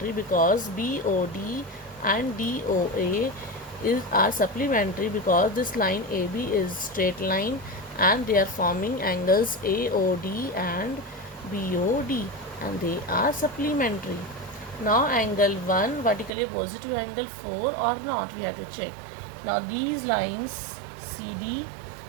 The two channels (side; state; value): left; drops out; at 16.3 s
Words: because BOD and DOA are supplementary because this line AB is straight line and they are forming angles AOD and BOD, and they are supplementary. Now angle 1 vertically opposite to angle 4 or not, we have to check. Now these lines CD